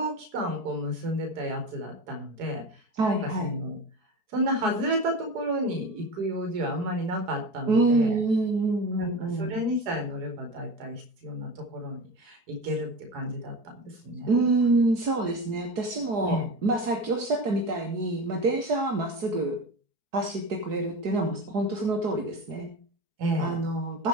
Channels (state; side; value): late; left; 4.8 ms